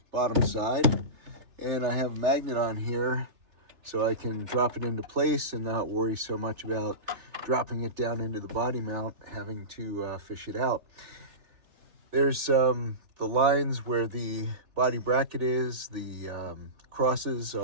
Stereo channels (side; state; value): left; late; 3.4 ms